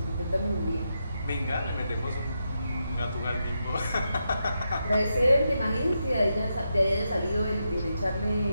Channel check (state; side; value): inverted; both; correlation -0.85